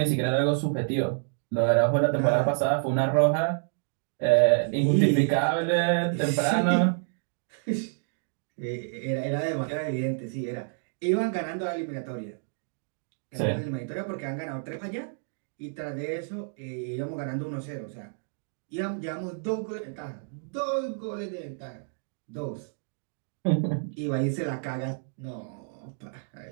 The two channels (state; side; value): silent; left; digital silence